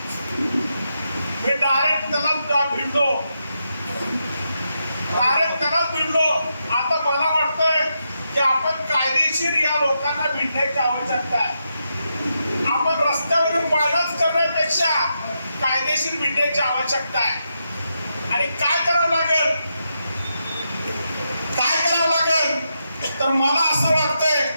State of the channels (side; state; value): both; inverted; correlation -0.84